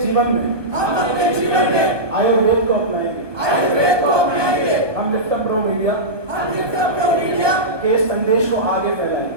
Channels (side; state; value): left; late; 1.1 ms